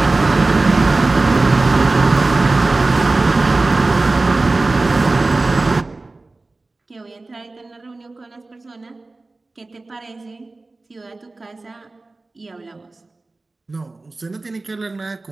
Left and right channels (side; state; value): left; quieter; 3.3 dB